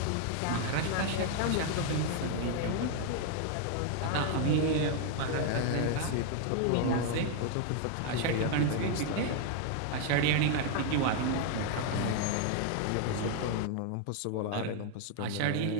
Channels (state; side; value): different; both; correlation 0.00